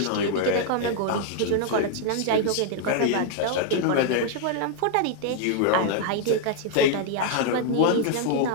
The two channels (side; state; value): both; different; correlation 0.00